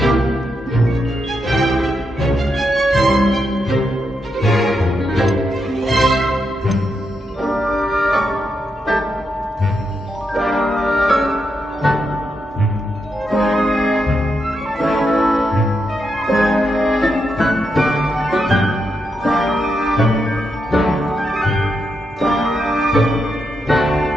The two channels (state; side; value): normal; both; correlation 0.83